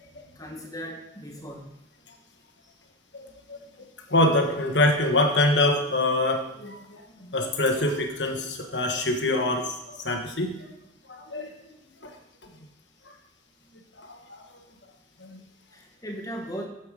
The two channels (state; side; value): normal; both; correlation 0.12